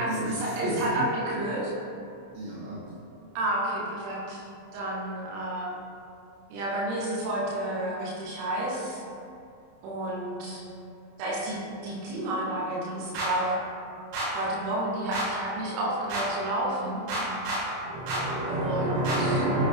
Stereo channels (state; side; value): late; left; 31 ms